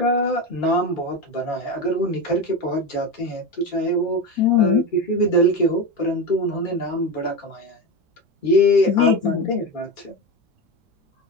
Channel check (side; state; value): both; normal; correlation 0.19